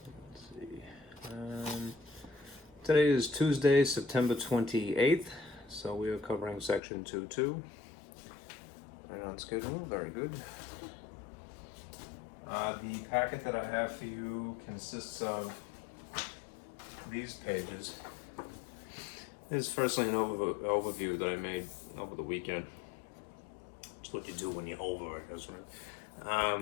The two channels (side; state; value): right; drops out; at 6.8 s